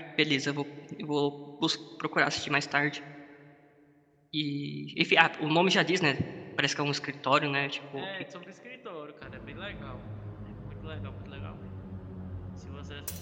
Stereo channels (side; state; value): both; identical; correlation 1.00